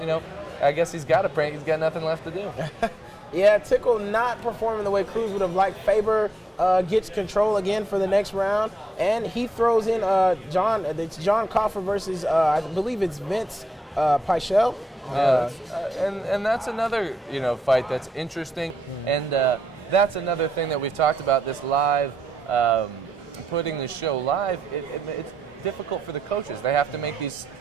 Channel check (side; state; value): both; normal; correlation 0.83